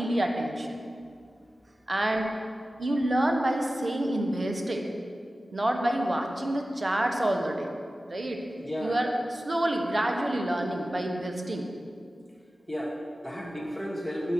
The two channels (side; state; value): both; normal; correlation 0.95